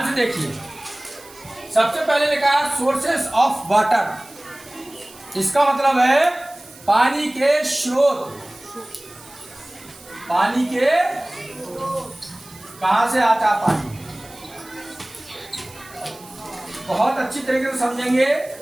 से देखिए, सबसे पहले लिखा है सोर्सेस ऑफ वाटर। इसका मतलब है पानी के स्रोत। पानी के कहां से आता है पानी, बहुत अच्छी तरीके से समझेंगे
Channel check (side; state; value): right; noise; hiss, 21 dB below the sound